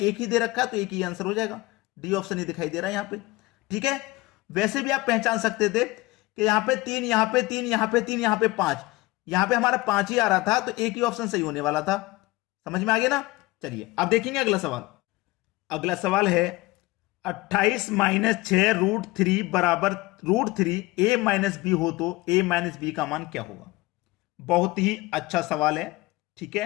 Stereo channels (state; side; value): quieter; right; 20.8 dB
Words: ही दे रखा है तो एक ही आंसर हो जाएगा। डी ऑप्शन ही दिखाई दे रहा है यहां पे। ठीक है, वैसे भी आप पहचान सकते थे कि यहां पे 3, यहां पे 3, यहां पे 3, यहां पे 5, यहां पे हमारा 5 ही आ रहा था तो एक ही ऑप्शन सही होने वाला था। समझ में आ गया ना। चलिए अब देखेंगे अगला सवाल। अगला सवाल है 28 माइनस 6 रूट 3 बराबर रूट 3 a माइनस बी हो तो a माइनस बी का मान क्या होगा। बहुत ही अच्छा सवाल है। ठीक